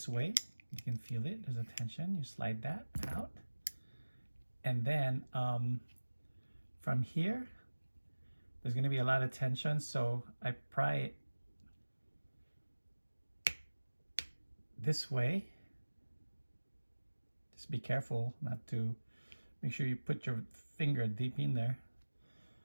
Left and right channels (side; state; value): both; inverted; correlation -1.00